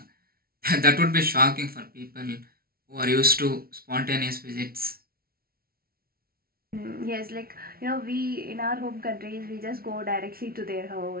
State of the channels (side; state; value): left; late; 0.44 ms